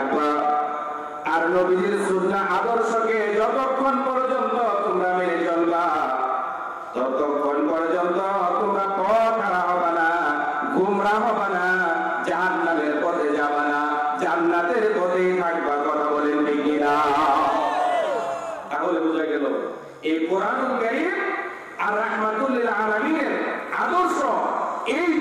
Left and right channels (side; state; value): both; identical; correlation 1.00